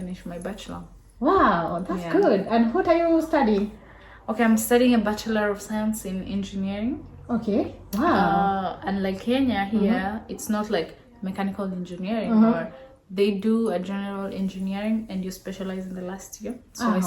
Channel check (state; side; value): identical; both; correlation 1.00